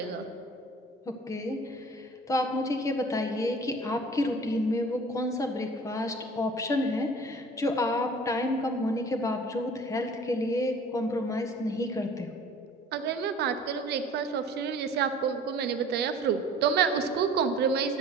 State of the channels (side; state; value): both; normal; correlation 0.46